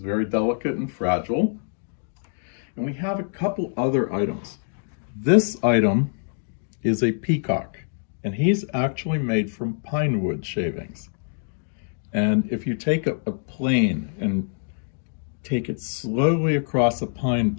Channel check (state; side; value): silent; right; digital silence